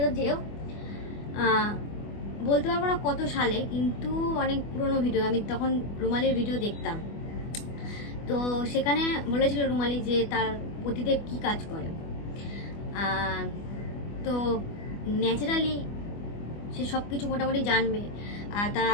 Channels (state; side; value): late; right; 24 ms